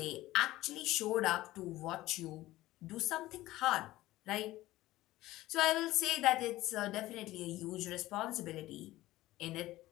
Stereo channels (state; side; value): quieter; right; 16.8 dB